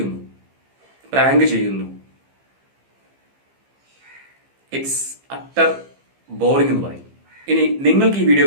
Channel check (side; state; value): left; late; 15 ms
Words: പ്രാങ്ക് ചെയ്യുന്നു. ഇറ്റ്സ് അട്ടർ ബോറിംഗ് എന്ന് പറയും. ഇനി നിങ്ങൾക്ക് ഈ വീഡിയോ